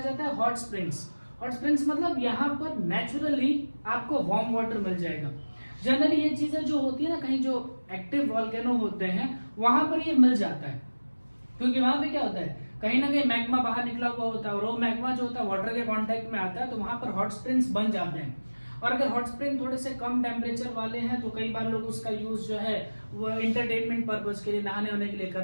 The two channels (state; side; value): inverted; both; correlation -1.00